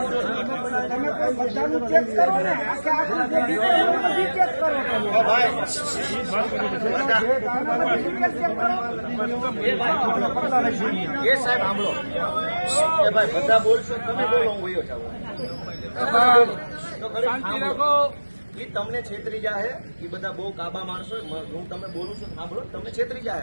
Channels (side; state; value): both; inverted; correlation -1.00